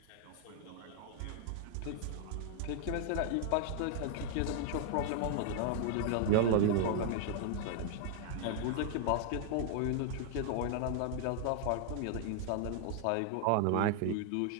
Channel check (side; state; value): both; different; correlation 0.00